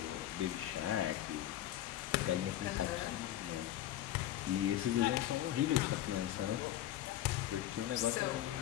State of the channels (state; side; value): quieter; right; 13.1 dB